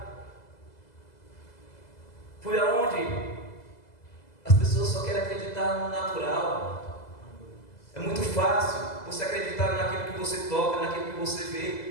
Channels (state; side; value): late; right; 2.0 ms